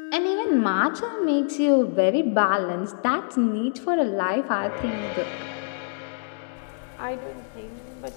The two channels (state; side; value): silent; right; digital silence